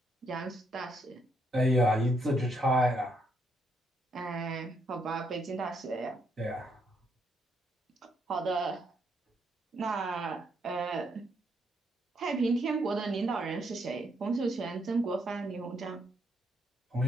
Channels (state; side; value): normal; both; correlation 0.74